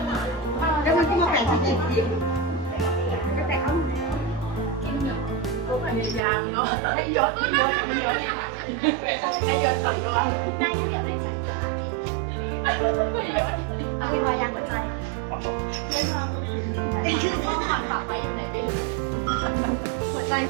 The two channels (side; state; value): left; drops out; at 6.2 s